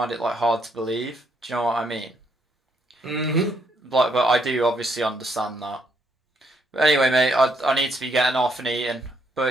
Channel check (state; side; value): normal; both; correlation 0.73